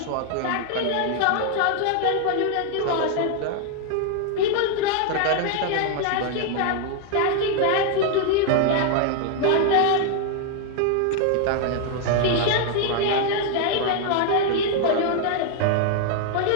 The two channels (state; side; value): different; both; correlation 0.00